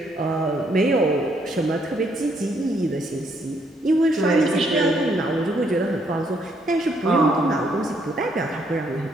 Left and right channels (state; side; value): normal; both; correlation 0.71